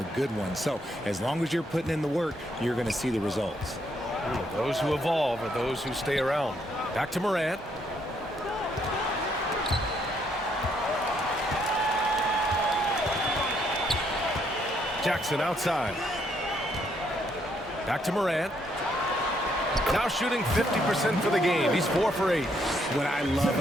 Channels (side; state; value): both; normal; correlation 0.72